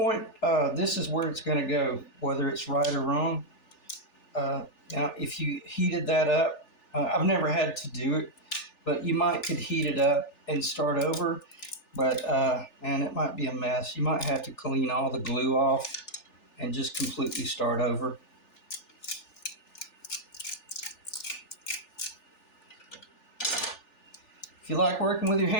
this is where it's going to go, whether it's right or wrong. Now, if you heated that up, I've never had to do it, but you could heat it up and start over. But and it might be a mess. You might have to clean all the glue off and just completely start over. If you like working with your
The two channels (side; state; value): right; late; 3.4 ms